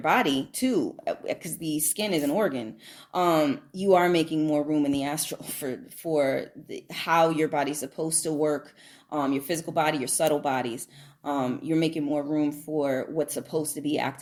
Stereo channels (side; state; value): both; identical; correlation 1.00